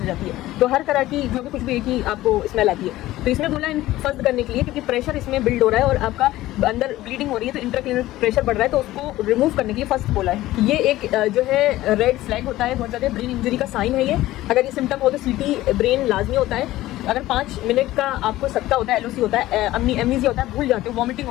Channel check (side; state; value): right; quieter; 16.1 dB